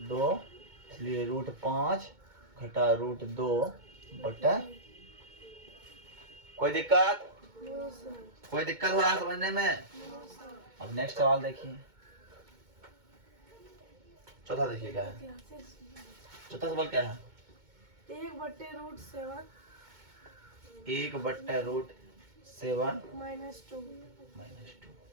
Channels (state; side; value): late; left; 2.2 ms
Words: 2, इसलिए रूट 5 घटा रूट 2 बट्टा। कोई दिक्कत? No sir. कोई दिक्कत हो रहा है समझने में? No sir. अब नेक्स्ट सवाल देखिए, चौथा देखिए क्या है, कैसे सुना? चौथा सवाल क्या है, 1 बट्टे रूट 7 1 बट्टा रूट 7 माइनस 2। माइनस 2।